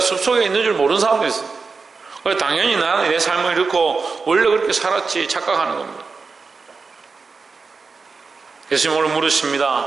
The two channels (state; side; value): quieter; left; 4.6 dB